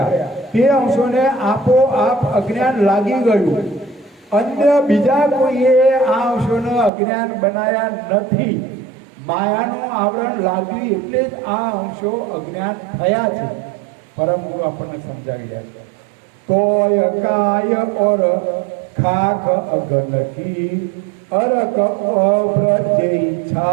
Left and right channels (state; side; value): drops out; left; at 6.9 s